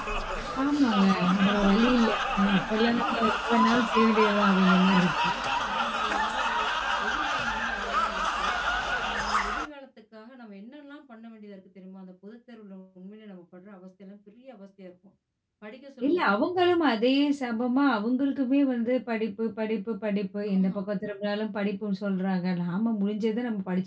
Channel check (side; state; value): both; identical; correlation 1.00